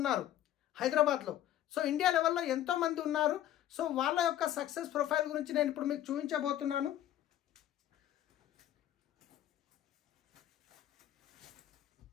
ఉన్నారు హైదరాబాద్లో. సో ఇండియా లెవెల్లో ఎంతోమంది ఉన్నారు. సో వాళ్ళ యొక్క సక్సెస్ ప్రొఫైల్ గురించి నేను ఇప్పుడు మీకు చూపించబోతున్నాను.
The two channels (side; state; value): right; quieter; 12.4 dB